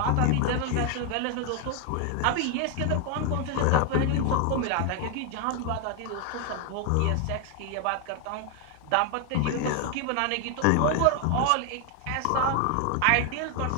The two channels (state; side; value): different; both; correlation 0.01